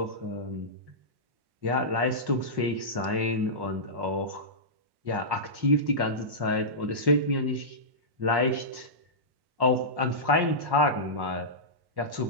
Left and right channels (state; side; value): late; left; 1.1 ms